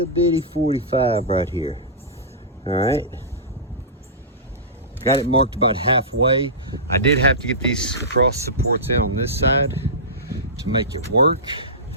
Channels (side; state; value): both; normal; correlation -0.19